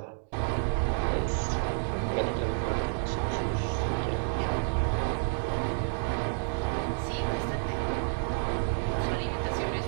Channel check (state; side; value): silent; left; digital silence